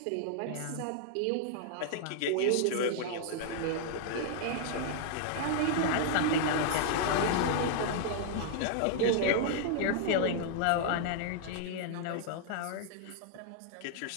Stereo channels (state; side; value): different; both; correlation -0.01